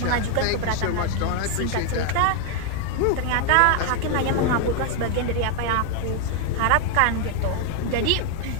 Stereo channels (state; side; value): different; both; correlation 0.00